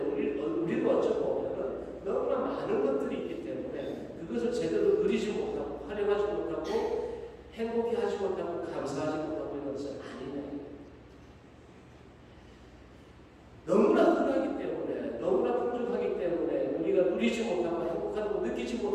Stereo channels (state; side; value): identical; both; correlation 1.00